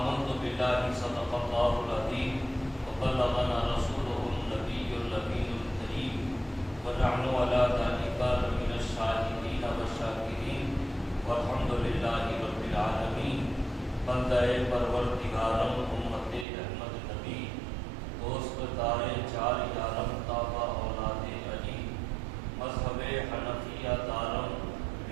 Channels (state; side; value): drops out; left; at 16.4 s